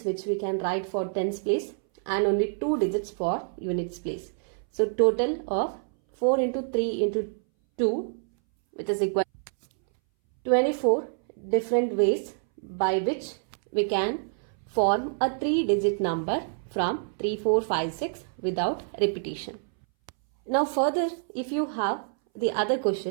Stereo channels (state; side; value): silent; left; 60 dB below the other